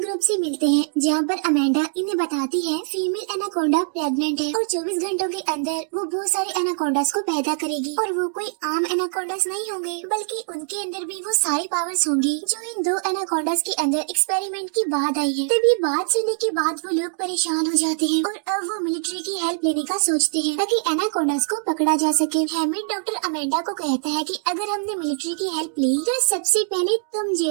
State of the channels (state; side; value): silent; left; digital silence